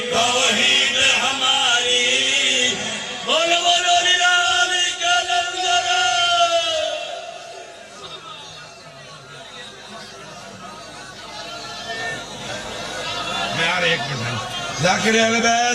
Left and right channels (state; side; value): identical; both; correlation 1.00